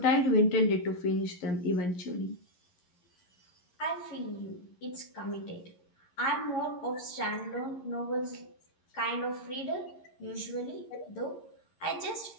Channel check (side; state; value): right; late; 11 ms